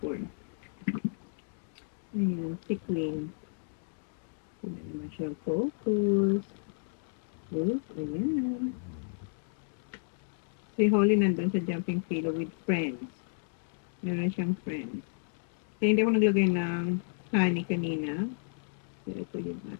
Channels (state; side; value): silent; right; digital silence